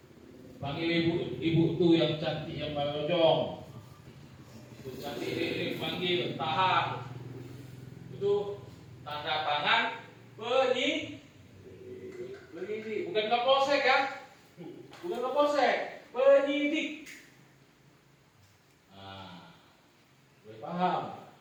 panggil ibu tuh yang cantik yang balojong, itu cantik ini panggil, tahan, itu tanda tangan penyidik, bukan Kapolsek ya, bukan Kapolsek, penyidik. Nah, boleh paham?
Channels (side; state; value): both; identical; correlation 1.00